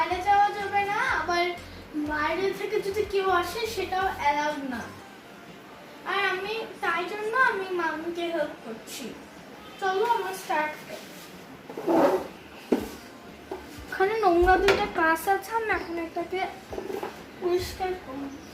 যাওয়া যাবে না, আবার বাইরে থেকে যদি কেউ আসে সেটাও অ্যালাউড না। আর তাই জন্য আমি মাকে হেল্প করছি। চলো আমার স্টার্ট। ওখানে নোংরা দুইটা কাজ আছে, আমি এখন এটাকে পরিষ্কার করব।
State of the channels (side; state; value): both; identical; correlation 1.00